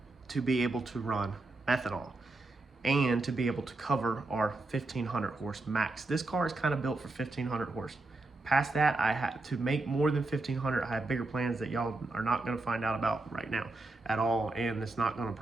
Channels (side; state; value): left; quieter; 3.1 dB